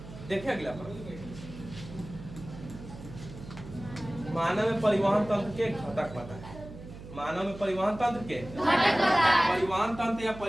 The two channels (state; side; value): noise; right; hum, 14 dB below the sound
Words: देखिए अगला प्रश्न, मानव में परिवहन तंत्र के घटक बताएं। मानव में परिवहन तंत्र के परिवहन तंत्र या